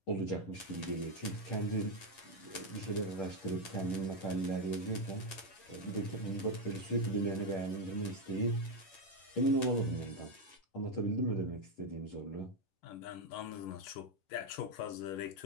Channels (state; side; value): late; right; 10 ms